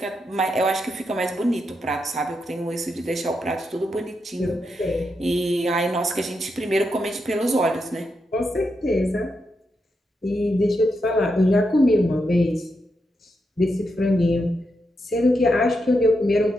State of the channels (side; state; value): both; normal; correlation 0.84